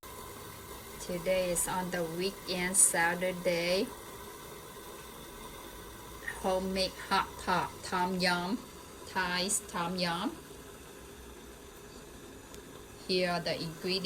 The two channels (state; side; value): identical; both; correlation 1.00